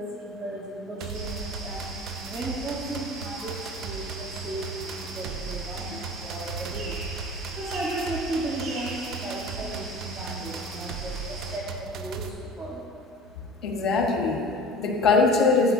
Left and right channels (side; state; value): both; normal; correlation 0.39